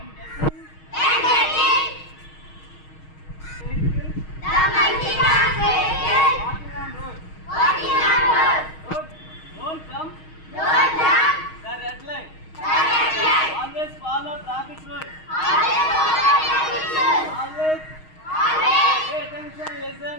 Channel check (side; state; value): right; late; 6.4 ms